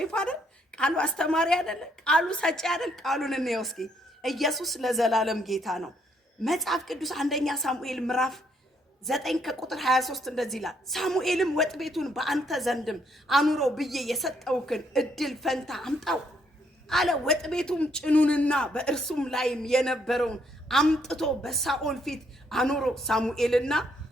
አይደል? ቃሉ አስተማሪ አይደል? ቃሉ ሰጪ አይደል? ቃሉን እንየው እስኪ። ኢየሱስ ለዘላለም ጌታ ነው። መጽሐፍ ቅዱስ አንደኛ ሳሙኤል ምዕራፍ 9 ከቁጥር 23 እንደዚህ ይላል። ሳሙኤልም ወጥ ቤቱን በአንተ ዘንድም አኑሮ ብዬ የሰጠውክን እድል ፈንታ አምጣው አለ። ወጥ ቤቱም ጭኑንና በእርሱም ላይም የነበረውን አምጥቶ በሳኦል ፊት አኑሮ።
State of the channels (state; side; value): normal; both; correlation 0.71